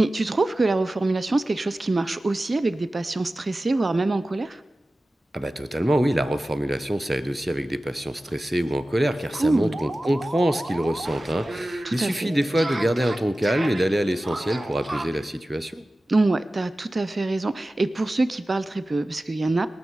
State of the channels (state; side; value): normal; both; correlation 0.96